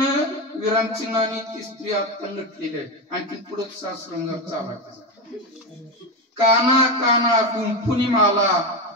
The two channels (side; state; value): both; normal; correlation 0.15